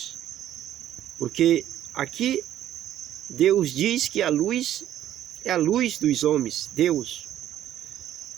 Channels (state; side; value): quieter; left; 11.9 dB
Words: Porque aqui Deus diz que a luz é a luz dos homens, Deus.